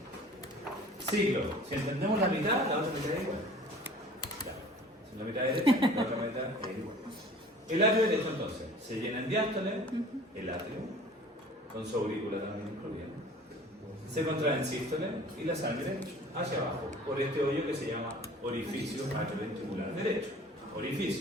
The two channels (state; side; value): normal; both; correlation 0.46